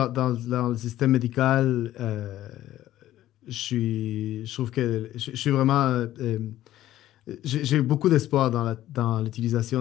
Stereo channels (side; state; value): right; quieter; 13.8 dB